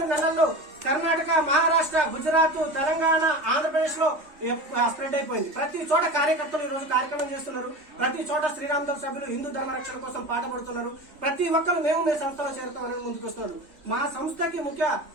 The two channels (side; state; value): left; late; 3.5 ms